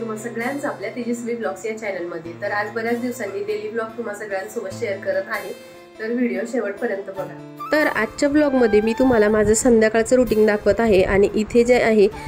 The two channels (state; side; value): identical; both; correlation 1.00